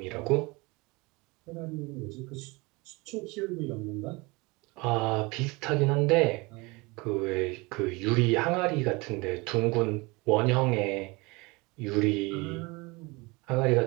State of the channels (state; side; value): quieter; left; 25.3 dB